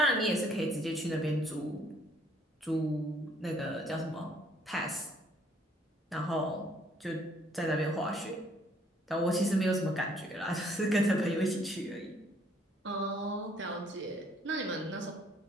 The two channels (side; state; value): both; normal; correlation 0.63